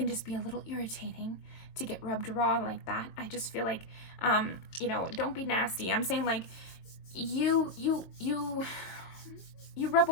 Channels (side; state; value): right; late; 22 ms